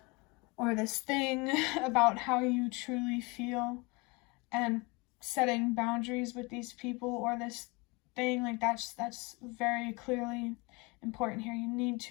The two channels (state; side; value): quieter; right; 27.1 dB